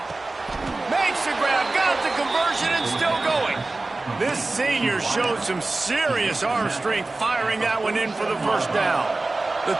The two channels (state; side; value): quieter; left; 3.2 dB